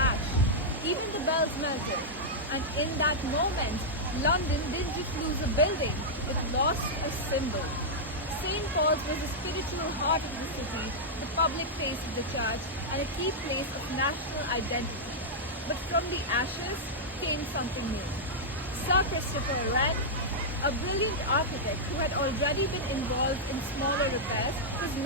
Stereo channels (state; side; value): normal; both; correlation -0.07